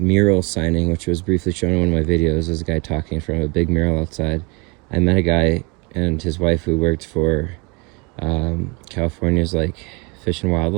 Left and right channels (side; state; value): left; quieter; 29.5 dB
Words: signing, which was briefly shown in one of my videos, there's a guy talking from a big mural outside. I met a guy and his wife who worked for California's like Fish and